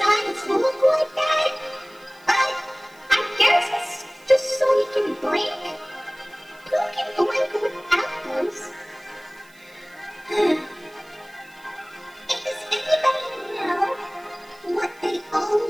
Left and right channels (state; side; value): noise; right; hiss, 27 dB below the sound